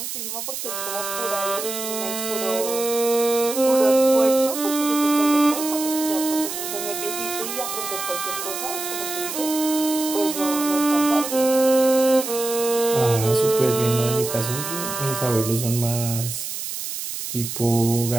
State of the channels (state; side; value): noise; right; hiss, 6 dB below the sound